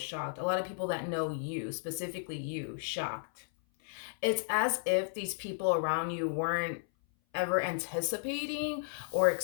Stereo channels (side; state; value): right; silent; 55 dB below the other